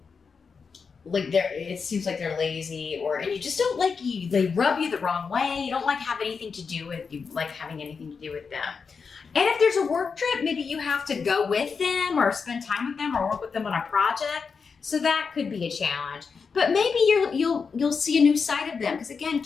It seems like they're lazy, and you just don't like they rub you the wrong way. You don't like having anything to do with them. And if there's a work trip, maybe you have to go with them or spend time with them or work with them on a project. So that could be a challenge. But maybe you'll see a new side of them, because again,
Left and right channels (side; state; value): right; quieter; 5.4 dB